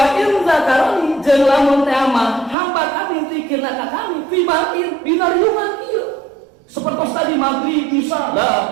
in zakarani jeung lamun teh mah hamba kami zikirna ka kami fi ba'in dina riungan ieu seperti tadi maghrib isya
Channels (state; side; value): drops out; left; at 2.6 s